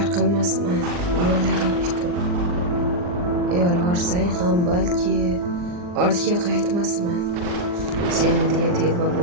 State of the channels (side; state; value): left; late; 39 ms